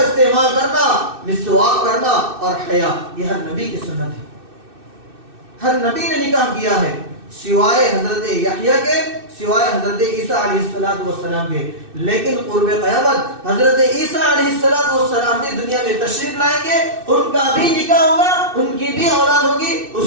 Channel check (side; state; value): left; late; 2.6 ms